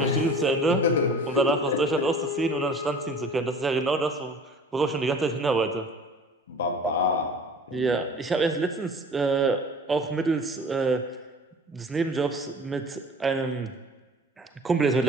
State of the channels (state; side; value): normal; both; correlation 0.44